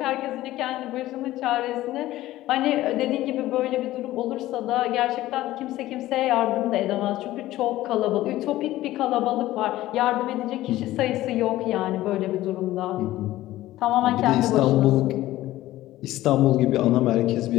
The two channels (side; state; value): right; quieter; 15.6 dB